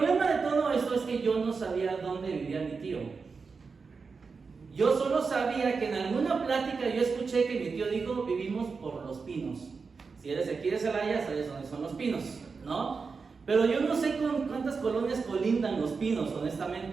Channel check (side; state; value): left; quieter; 4.9 dB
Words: de todo esto es que yo no sabía dónde vivía mi tío. Yo solo sabía que en alguna plática yo escuché que mi tío dijo, vivimos por Los Pinos. Si eres aquí de Celaya, sabes dónde son Los Pinos, ¿no? Pero yo no sé con cuántas colonias colindan Los Pinos,